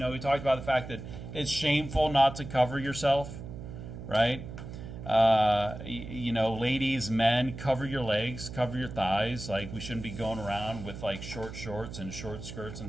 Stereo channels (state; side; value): noise; right; hum, 10 dB below the sound